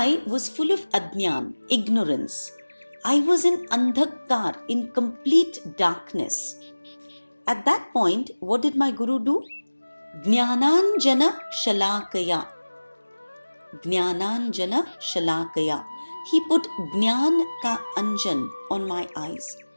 was full of adnyan, ignorance. I was in andhakar, in complete darkness. At that point, what did my Guru do? Jnananjana Shalakaya. Jnananjana Shalakaya. He put Jnan ka anjan on my eyes.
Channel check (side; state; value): both; inverted; correlation -1.00